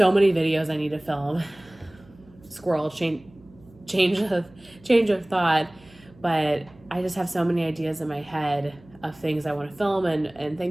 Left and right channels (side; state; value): right; noise; hum, 26 dB below the sound